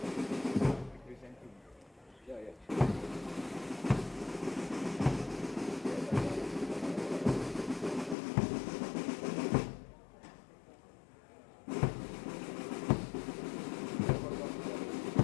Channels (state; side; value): drops out; right; at 8.2 s